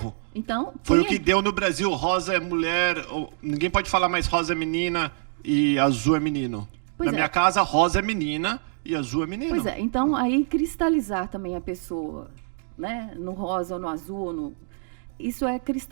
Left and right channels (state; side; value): silent; left; digital silence